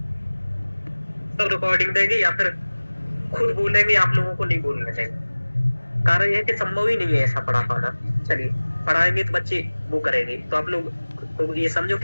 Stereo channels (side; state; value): both; inverted; correlation -1.00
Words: सब रिकॉर्डिंग देंगे या फिर खुद बोलेंगे, आप लोगों को नहीं बोलने देंगे। कारण यह है कि संभव ही नहीं है ऐसा पढ़ा पाना। चलिए, पढ़ाएंगे तो बच्चे वो करेंगे, तो आप लोग को ये समझो